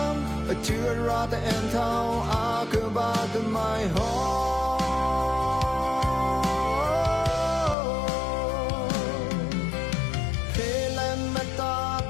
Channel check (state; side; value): drops out; right; at 7.8 s